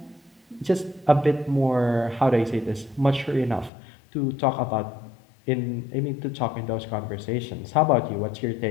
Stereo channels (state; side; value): drops out; right; at 3.7 s